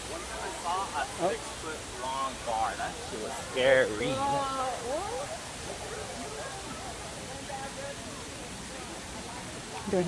I saw a 6-foot long bar. That shit was scary. Do we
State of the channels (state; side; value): identical; both; correlation 1.00